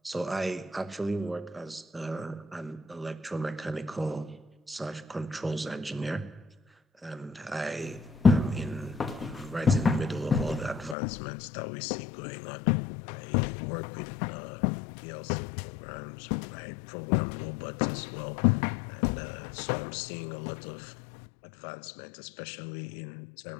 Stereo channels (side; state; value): right; drops out; at 11.0 s